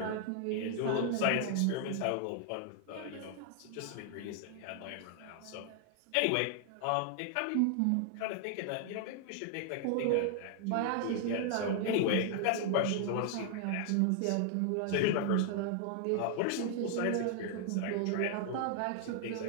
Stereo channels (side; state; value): both; different; correlation 0.00